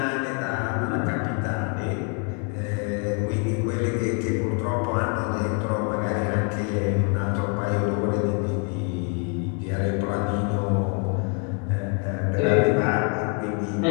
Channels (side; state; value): right; quieter; 36.9 dB